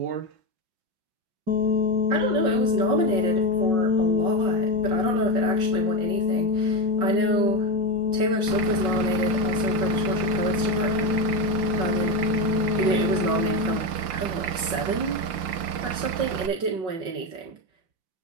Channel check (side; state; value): left; late; 5.4 ms